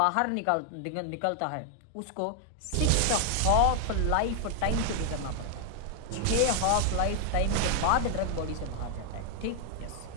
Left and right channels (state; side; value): different; both; correlation 0.00